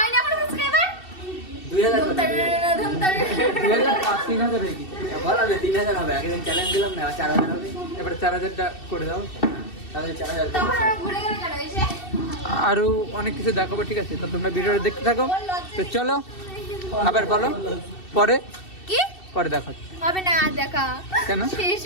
এখনো সাবস্ক্রাইবার? 2000 করে দাও, 2000। 3000 হয়ে গেছে। বললাম যে 3000 হবে, আগের দিন চ্যালেঞ্জ দিলাম না, 4000 হবে। এবার 4000টা করে দাও। তাহলে 4000 তখন ওরা ঘুরে গেল কেন এসে? আরো অনেক কিছু দেখাবো, ঠিক আছে? তো তোমরা ভিডিওটা দেখতে থাকো। তো চলো, আবার বলো, পরে কি পরে দেখো। হবে না আর দেখা? কেন? শেষ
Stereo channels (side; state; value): right; late; 2.7 ms